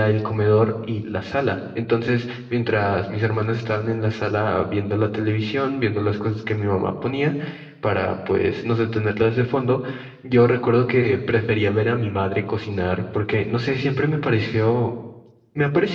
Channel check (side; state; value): both; identical; correlation 1.00